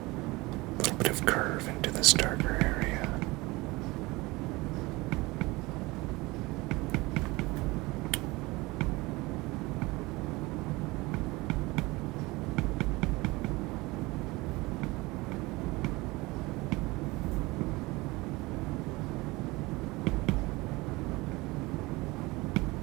little bit of curve into this darker area.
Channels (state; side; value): quieter; left; 22.3 dB